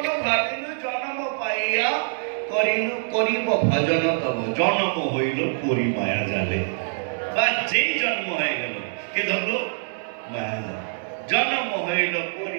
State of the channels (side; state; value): left; silent; digital silence